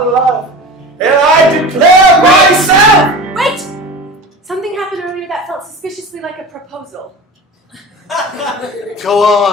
love, and I declare myself! Wait! Something happened earlier that felt suspiciously like a proposal. Go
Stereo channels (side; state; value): both; normal; correlation 0.33